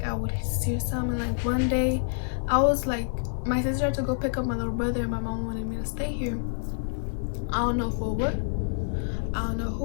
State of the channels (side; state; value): right; silent; 60 dB below the other